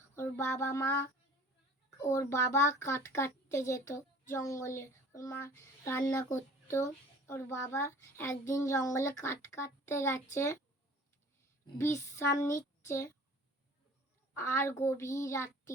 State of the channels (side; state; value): both; normal; correlation 0.48